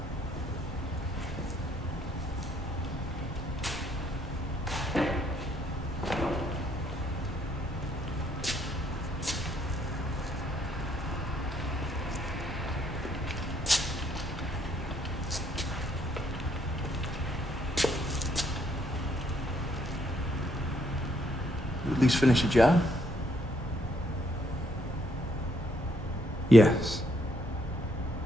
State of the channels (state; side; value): normal; both; correlation 0.71